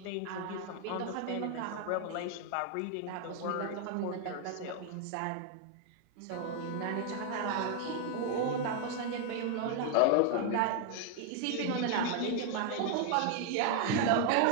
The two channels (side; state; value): both; different; correlation 0.00